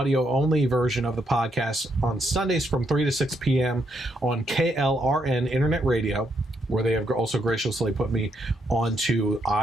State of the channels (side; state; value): both; normal; correlation 0.76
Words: version of the podcast on Sundays from 3 to 6 p.m. on KLRN Internet Radio, where they have also graciously put me onto